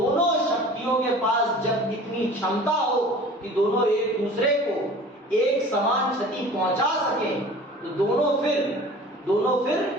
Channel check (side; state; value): both; normal; correlation 0.43